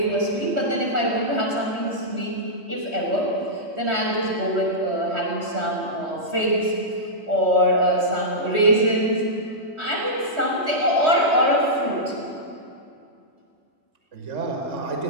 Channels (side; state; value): left; late; 3.1 ms